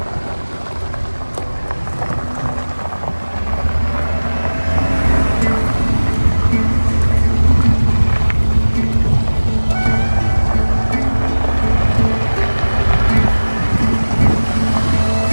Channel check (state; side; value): inverted; both; correlation -1.00